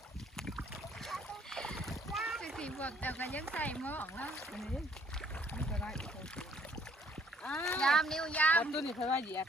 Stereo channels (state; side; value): normal; both; correlation 0.62